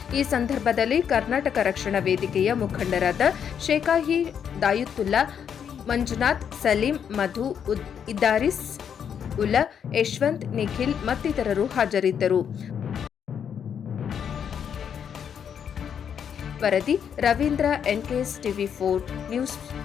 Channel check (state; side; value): quieter; right; 8.0 dB